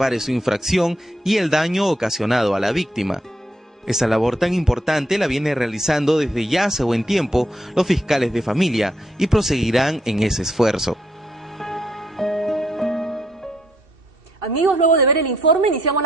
su infracción y el daño ocasionado a la víctima. Esa labor tan importante la viene realizando desde ya hace buen tiempo los fiscales de familia y proseguirán en ese esfuerzo. Amigos, luego de ver el informe, iniciamos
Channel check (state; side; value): normal; both; correlation 0.75